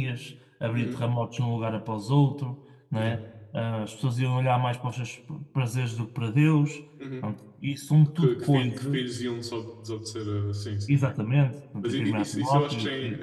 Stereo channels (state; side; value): identical; both; correlation 1.00